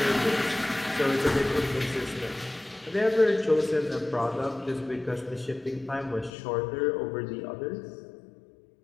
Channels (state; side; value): drops out; right; at 6.3 s